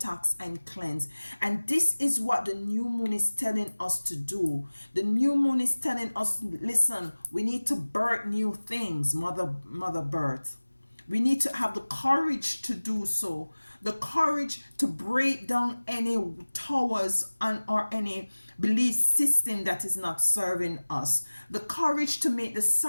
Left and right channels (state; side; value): inverted; both; correlation -1.00